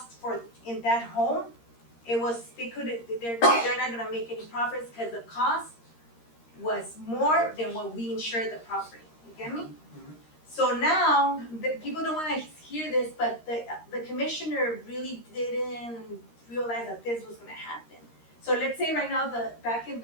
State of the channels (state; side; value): late; right; 13 ms